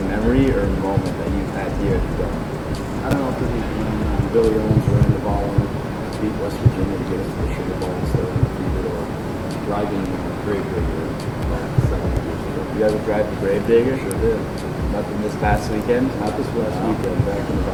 memory or moment that you've had here at the Dome? I don't know if this is when Billy Owens ran the ball and beat West Virginia to get us to the Sugar Bowl instead of undefeated, or driving Gravedigger about 7 years ago. You ever drive the Gravedigger? Sure did. Nothing this past weekend? Not this last weekend, back in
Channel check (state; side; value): identical; both; correlation 1.00